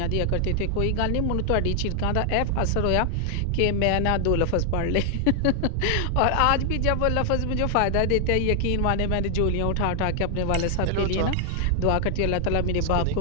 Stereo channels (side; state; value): both; different; correlation 0.00